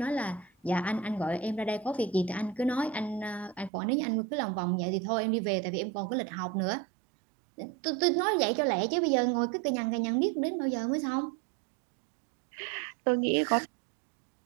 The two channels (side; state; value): left; drops out; at 3.7 s